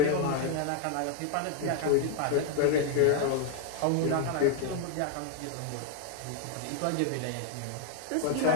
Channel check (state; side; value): different; both; correlation 0.00